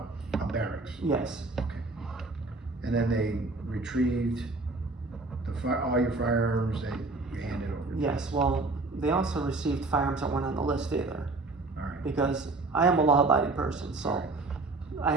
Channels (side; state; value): left; quieter; 3.3 dB